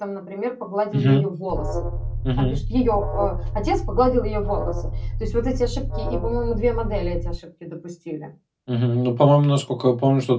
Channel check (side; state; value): both; identical; correlation 1.00